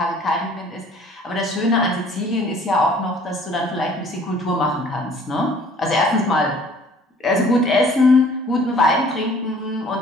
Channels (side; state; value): both; normal; correlation 0.54